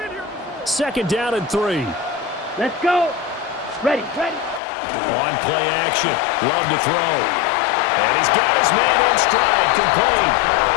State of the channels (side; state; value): right; drops out; at 4.6 s